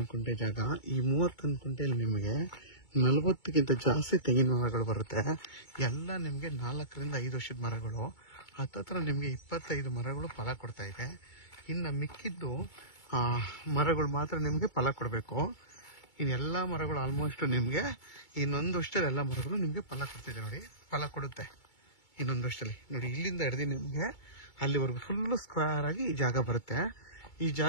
ಕುಂಟೆ ಜಾಗ. ಈ 31 ಕುಂಟೆಯಲ್ಲಿ ನಿಮಗೆ 40ಕ್ಕಿಂತ ಜಾಸ್ತಿ ತೆಂಗಿನ ಮರಗಳು ಬರುತ್ತೆ. ಎಲ್ಲ ನಿಮಗೆ 4 ರಿಂದ 5 ವರ್ಷದ ಮರಗಳು. ಹತ್ತತ್ರ ನಿಮಗೆ 25 ಮರಗಳು ಫಲ ಕೊಡ್ತಾ ಇದೆ. ಇನ್ನು ಮಿಕ್ಕಿದ್ದು ಮರಗಳು ಮಾತ್ರ ನಿಮಗೆ ಫಲ ಕೊಡಬೇಕು. ಇನ್ನೆಲ್ಲ ಮರಗಳು ಆಲ್ಮೋಸ್ಟ್ ನಿಮಗೆ ಇನ್ನೊಂದು ವರ್ಷದಲ್ಲಿ ಎಲ್ಲ ಮರಗಳು ನಿಮಗೆ ಫಲ ಕೊಡ್ತಿದೆ. ನೋಡಿ ಫಲ ಕೊಡುತ್ತೆ ಇನ್ನೊಂದು ವರ್ಷದಲ್ಲಿ. ನೋಡಿ ಇಲ್ಲಿಂದ ಹಿಡಿದು ನಿಮಗೆ ಅಲ್ಲಿವರೆಗೂ ಫುಲ್ಲು ಸ್ಕ್ವೇರ್ ಆಗಿ ಈ ಜಾಗ ಬರುತ್ತೆ. ಈ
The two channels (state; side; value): late; right; 2.2 ms